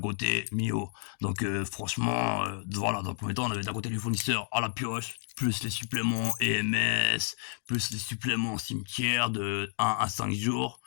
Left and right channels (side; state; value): right; silent; digital silence